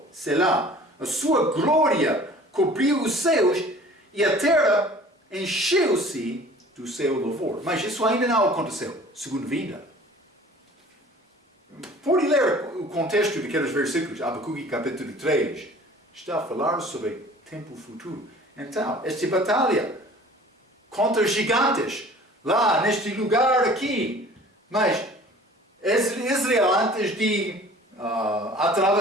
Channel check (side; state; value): both; normal; correlation 0.48